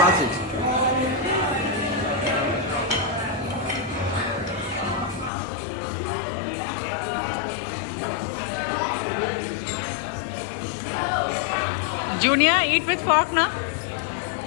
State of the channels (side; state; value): right; drops out; at 5.3 s